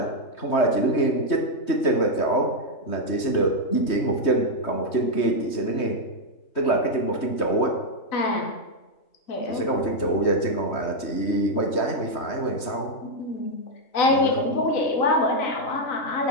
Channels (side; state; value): right; late; 3.2 ms